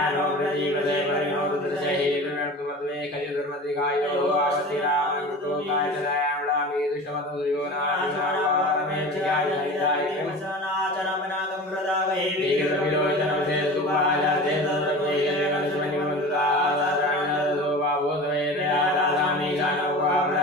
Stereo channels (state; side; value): normal; both; correlation 0.35